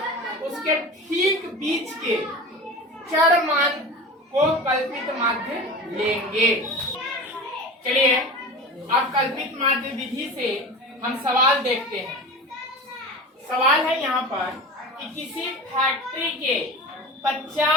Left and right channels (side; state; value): both; normal; correlation 0.32